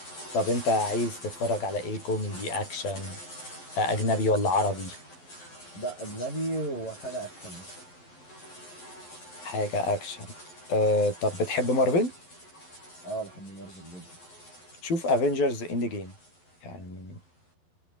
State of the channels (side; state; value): right; late; 11 ms